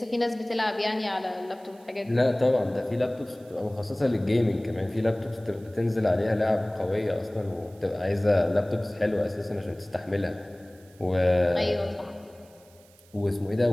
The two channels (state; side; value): noise; right; hiss, 28 dB below the sound